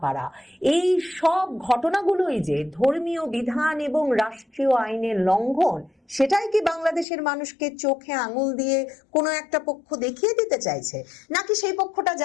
পারা, এই সব ঘটনাগুলোই যে ধর্মীয় বিধান এবং রাষ্ট্রীয় আইনের লঙ্ঘন, সেটাই কি বাংলাদেশের মানুষকে চোখে আঙুল দিয়ে কোনো একটা পক্ষ দেখিয়ে দিতে চাইছে? নাকি সেই পক্ষটা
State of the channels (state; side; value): drops out; right; at 7.1 s